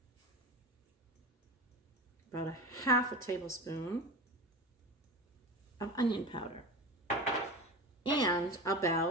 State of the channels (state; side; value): normal; both; correlation 0.28